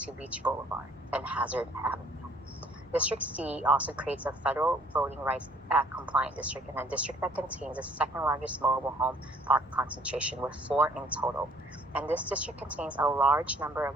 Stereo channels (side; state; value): both; normal; correlation 0.59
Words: Beach Boulevard and Hazard Avenue. District C also creates a Federal Voting Rights Act compliant district and a district that contains the second largest mobile home park concentration with 4 in total. And this district contains a large number